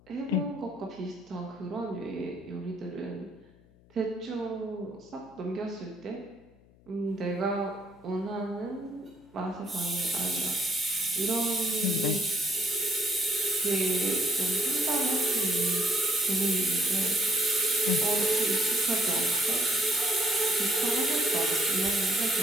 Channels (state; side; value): noise; left; hum, 28 dB below the sound